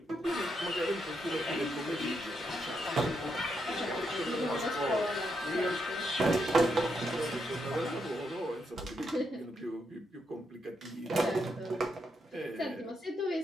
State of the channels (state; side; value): normal; both; correlation 0.80